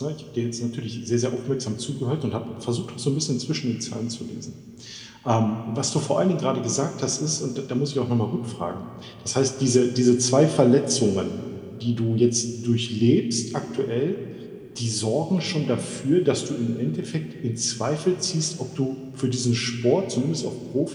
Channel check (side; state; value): both; identical; correlation 1.00